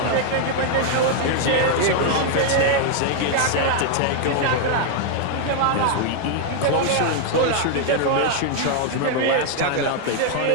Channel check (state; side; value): different; both; correlation 0.00